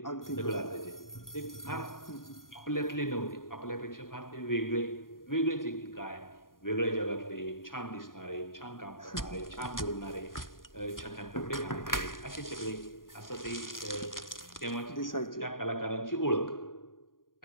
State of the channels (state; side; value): late; right; 0.90 ms